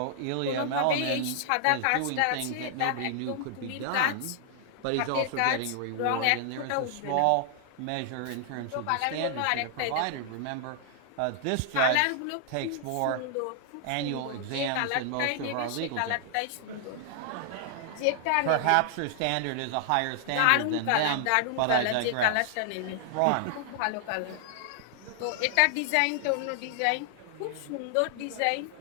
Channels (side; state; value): both; different; correlation 0.00